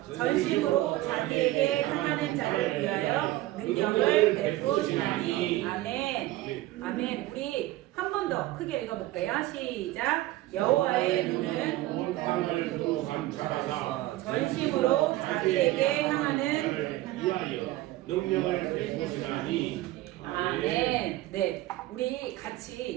전심으로 자기에게 향하는 자를 위하여 능력을 베푸시나니. 아멘. 아멘. 우리 한 번 더 크게 읽어볼게요. 시작! 여호와의 눈은 온 땅을 두루 감찰하사 전심으로 자기에게 향하는 위하여 능력을 베푸시나니. 아멘. 네, 우리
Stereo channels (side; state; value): left; quieter; 16.5 dB